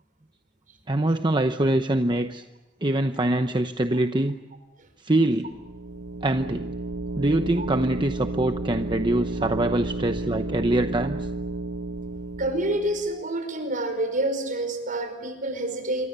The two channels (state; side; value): normal; both; correlation 0.65